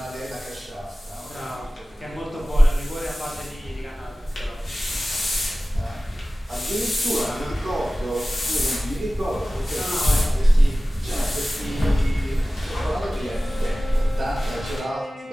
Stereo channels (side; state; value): both; normal; correlation 0.97